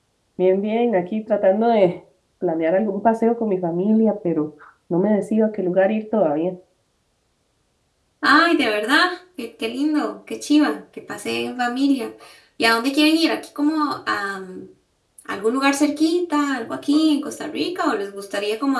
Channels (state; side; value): identical; both; correlation 1.00